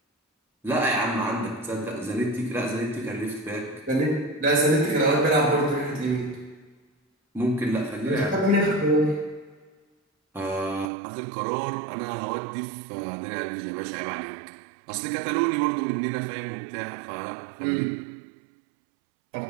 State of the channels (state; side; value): drops out; left; at 10.9 s